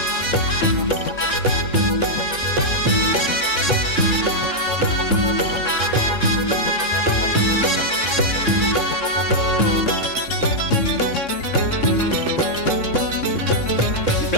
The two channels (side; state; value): right; late; 3.6 ms